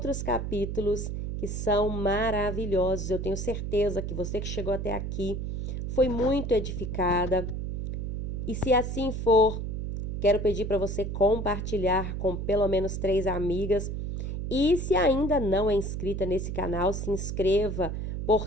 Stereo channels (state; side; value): noise; right; hum, 4 dB below the sound